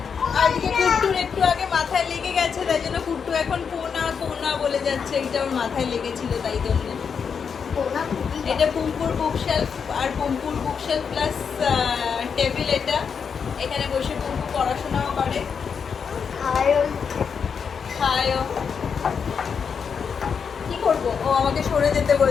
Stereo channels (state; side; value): quieter; right; 6.4 dB